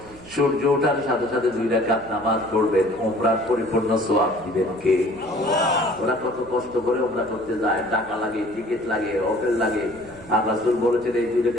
সূর্য ওঠার সাথে সাথে 2 রাকাত নামাজ পড়বেন, উমরার পরিপূর্ণ সওয়াব দিবেন কে? ওরা কত কষ্ট করে উমরা করতে যায়, টাকা লাগে, টিকিট লাগে, হোটেল লাগে, আর রাসূল বলেছেন এই 2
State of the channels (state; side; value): noise; right; hum, 20 dB below the sound